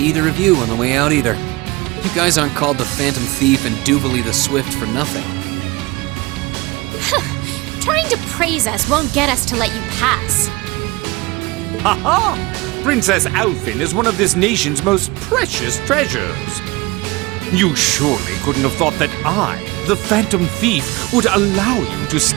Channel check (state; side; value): quieter; left; 22.7 dB